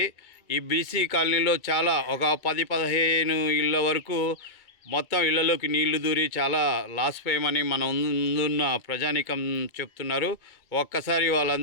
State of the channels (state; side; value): late; right; 2.2 ms